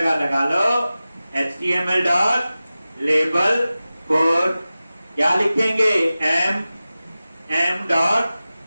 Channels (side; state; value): both; inverted; correlation -0.96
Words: लगा लो HTML डॉट लेबल फॉर, क्या लिखेंगे, m डॉट